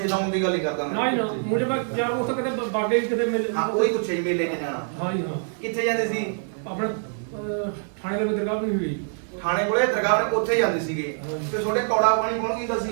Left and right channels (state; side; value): silent; left; 62 dB below the other